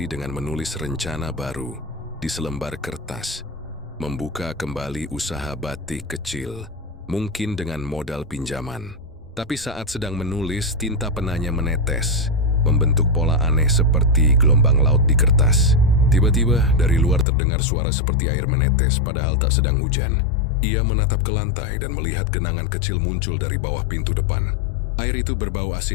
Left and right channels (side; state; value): right; drops out; at 17.2 s